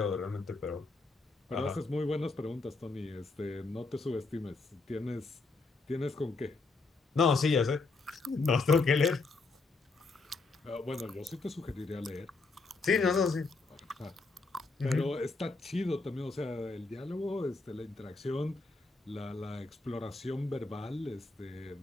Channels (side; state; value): right; quieter; 3.8 dB